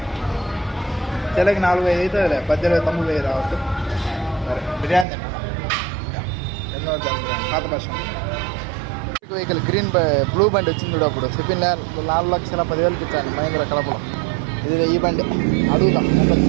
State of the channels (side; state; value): left; drops out; at 5.1 s